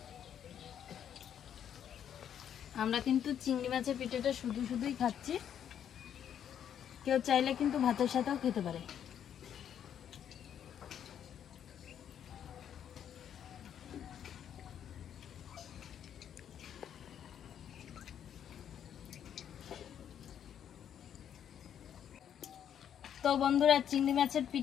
আমরা কিন্তু চিংড়ি মাছের পিঠাটা শুধু শুধুই খাচ্ছি, কেউ চাইলে কিন্তু ভাতের সাথেও খেতে পারে। তো বন্ধুরা, চিংড়ি মাছের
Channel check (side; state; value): right; quieter; 9.3 dB